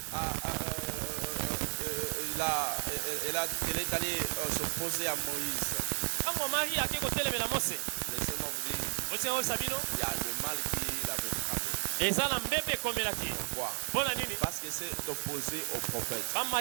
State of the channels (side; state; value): left; silent; digital silence